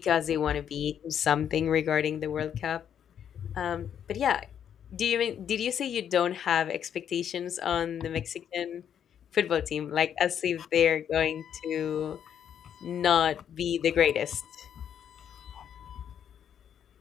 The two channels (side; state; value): right; quieter; 9.0 dB